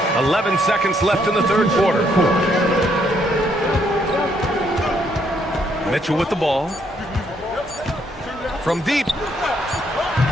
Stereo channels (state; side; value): normal; both; correlation 0.71